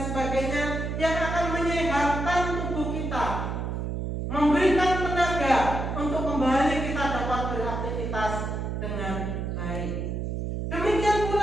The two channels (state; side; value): noise; right; hum, 3 dB below the sound